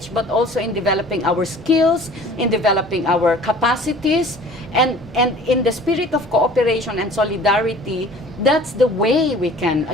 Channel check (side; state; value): both; normal; correlation 0.47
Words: but also in developing our skills, in developing our capacities, and in the spirit of cooperation and solidarity. That's the way we can